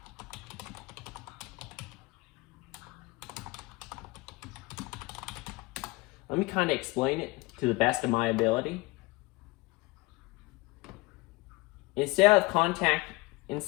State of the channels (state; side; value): quieter; right; 23.5 dB